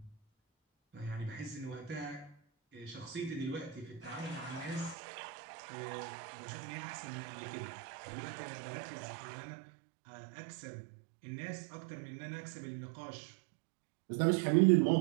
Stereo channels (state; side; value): drops out; left; at 5.0 s